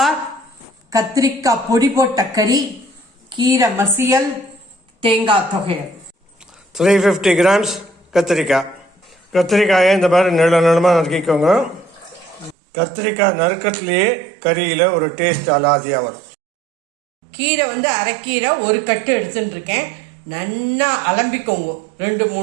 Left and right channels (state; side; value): drops out; left; at 12.6 s